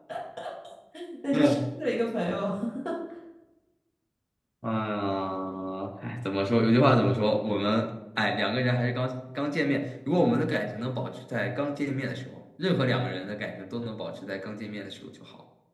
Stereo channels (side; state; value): both; identical; correlation 1.00